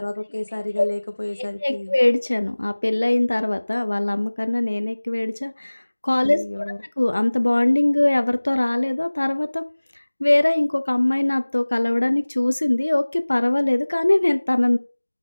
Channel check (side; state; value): both; inverted; correlation -1.00